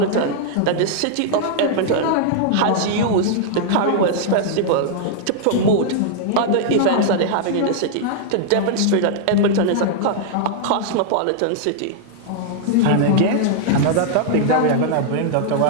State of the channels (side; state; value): both; different; correlation -0.01